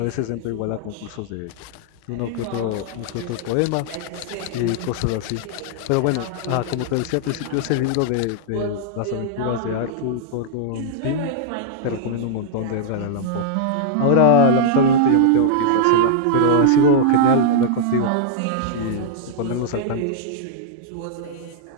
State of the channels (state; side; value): different; both; correlation -0.02